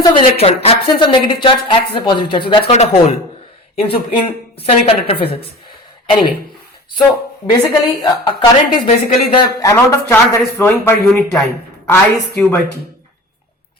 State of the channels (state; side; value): normal; both; correlation 0.37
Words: of electron, absence of negative charge acts as a positive charge. So that's called a hole in semiconductor physics. Anyway, so basically, a current is basically the amount of charge that is flowing per unit time. I is Q by T.